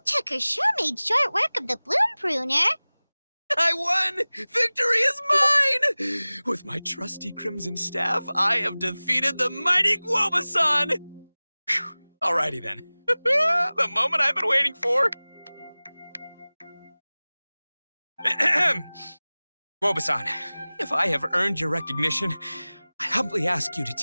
sure made short work of the bloom pruner. I won! Victory is mine! With my trusty crimson staff, I have defeated the mighty Guoba-san! Alrighty then. The moment I've been waiting for. Guoba-san, if I have earned your recognition, I humbly ask you to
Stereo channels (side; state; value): both; inverted; correlation -0.99